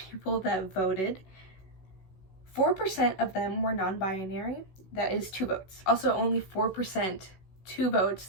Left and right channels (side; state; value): right; late; 16 ms